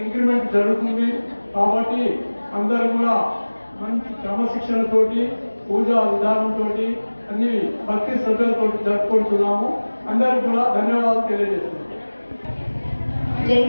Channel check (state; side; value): inverted; both; correlation -1.00